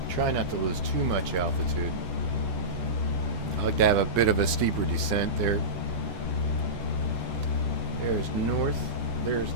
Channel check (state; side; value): late; left; 11 ms